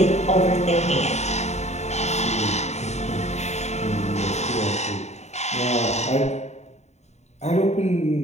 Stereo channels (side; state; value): right; late; 0.32 ms